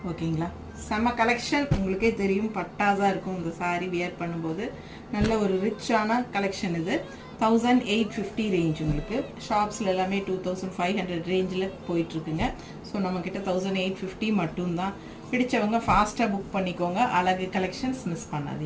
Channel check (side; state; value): both; identical; correlation 1.00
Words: ஓகேங்களா, செம்ம கலெக்ஷன். உங்களுக்கே தெரியும், பட்டாஸாக இருக்கும் இந்த சாரீ வியர் பண்ணும்போது. நல்ல ஒரு ரிச்சான கலெக்ஷன் இது. 1850 ரேஞ்ச். உங்களுக்கு ஷாப்ஸில் எல்லாமே 2500 ரேஞ்சில் போயிட்டுருக்குங்க. ஸோ நம்மக்கிட்ட 1850 மட்டும்தான். பிடிச்சவங்க ஃபாஸ்ட்டாக புக் பண்ணிக்கோங்க. அழகு கலெக்ஷன்ஸ் மிஸ்